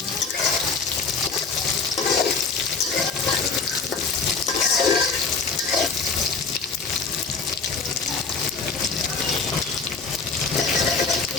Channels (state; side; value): quieter; right; 4.9 dB